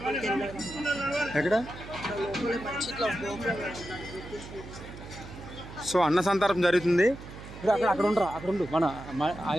ఎక్కడ సో అన్న సంతర్పణ జరుగుతుంది. అక్కడ ఉండరా, అక్కడ ఉండు, మన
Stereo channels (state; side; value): noise; right; hum, 14 dB below the sound